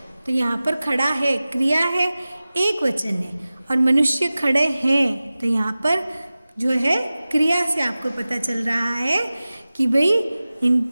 तो यहाँ पर खड़ा है क्रिया है, एक वचन है, और मनुष्य खड़े हैं तो यहाँ पर जो है क्रिया से आपको पता चल रहा है कि भाई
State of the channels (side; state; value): both; inverted; correlation -0.97